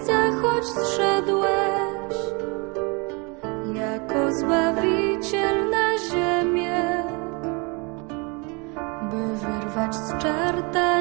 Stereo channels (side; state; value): left; quieter; 30.6 dB